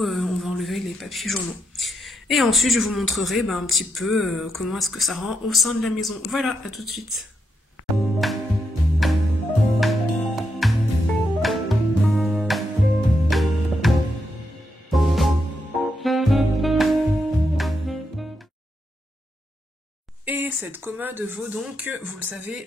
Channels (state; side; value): normal; both; correlation 0.82